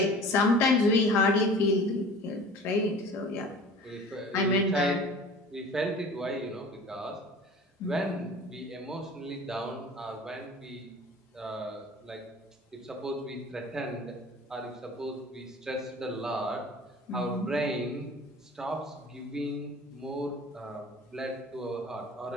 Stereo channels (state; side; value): normal; both; correlation 0.43